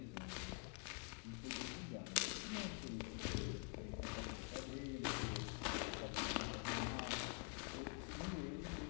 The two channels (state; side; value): quieter; right; 36.4 dB